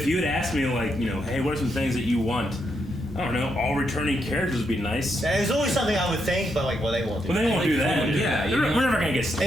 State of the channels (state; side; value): normal; both; correlation 0.80